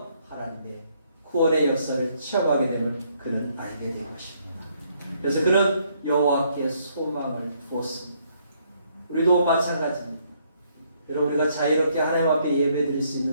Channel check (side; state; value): both; inverted; correlation -0.70